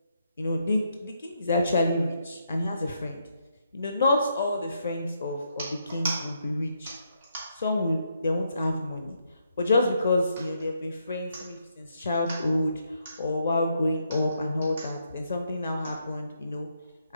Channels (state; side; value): inverted; both; correlation -0.77